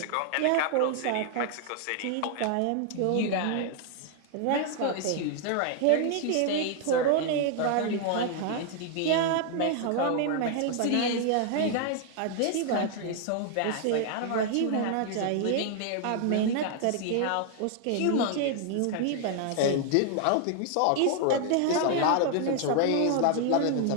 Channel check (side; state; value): both; different; correlation 0.00